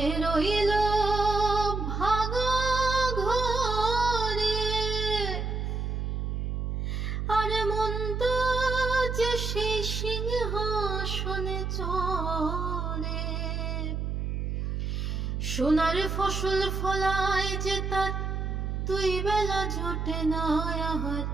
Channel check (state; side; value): noise; right; hum, 2 dB below the sound